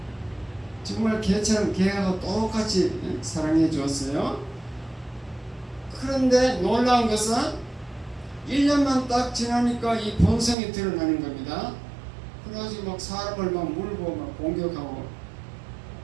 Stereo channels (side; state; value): left; drops out; at 10.6 s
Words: 정말 개처럼 개하고 똑같이 사랑해 주었어요. 그런데 놀라운 것은 1년만 딱 지나니까 이 본성이 드러나는 겁니다. 그래가지고 막 사람을 막 물고 막 공격하고,